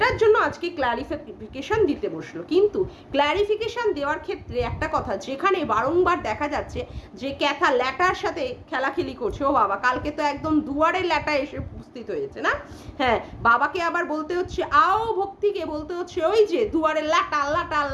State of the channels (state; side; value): identical; both; correlation 1.00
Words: জন্য আজকে ক্ল্যারিফিকেশন দিতে বসলো। কিন্তু ক্ল্যারিফিকেশন দেওয়ার ক্ষেত্রে একটা কথা, যেখানে বারংবার দেখা যাচ্ছে যে ক্যাথা ল্যাটার সাথে খেলাখেলি করছে, ও বাবা কালকে তো একদম দুয়ারে ল্যাটা এসে উপস্থিত হয়েছে না, হ্যাঁ, বাবাকে আবার বলতে হচ্ছে আও, ভক্তিকে বলতে হচ্ছে ওই যে দুয়ারে ল্যাটা ল্যাটা